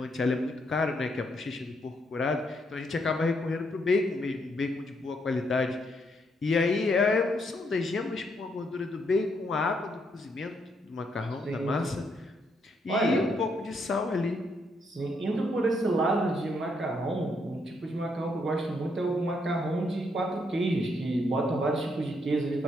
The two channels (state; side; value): normal; both; correlation 0.75